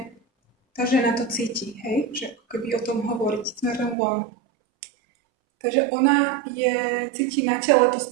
tá žena to cíti, hej? Že ako keby o tom hovoriť smerom von. Takže ona cíti na tele to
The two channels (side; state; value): left; drops out; at 4.0 s